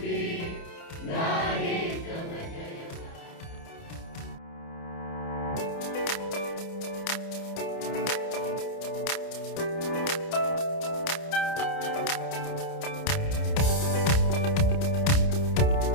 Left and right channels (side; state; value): right; late; 29 ms